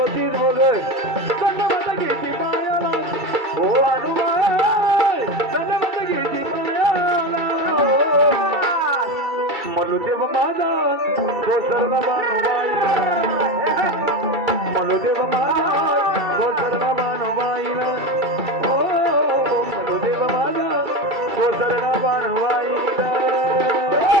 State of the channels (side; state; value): left; late; 2.3 ms